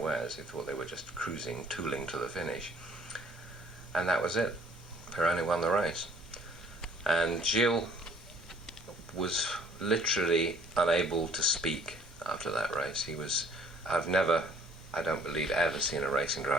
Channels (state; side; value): normal; both; correlation 0.57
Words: He thought they were just cruising, tooling to the finish. And that was it. Pironi won the race. And Gilles was literally unable to speak after that race. I've never, I don't believe, ever seen a racing